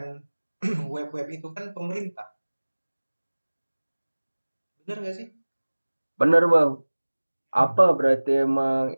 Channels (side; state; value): both; inverted; correlation -1.00